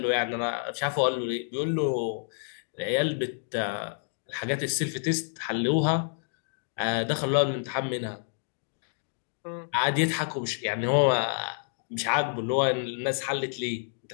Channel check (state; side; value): silent; right; digital silence